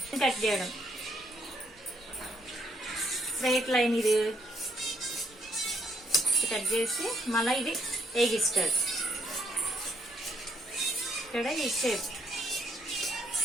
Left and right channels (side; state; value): both; normal; correlation 0.71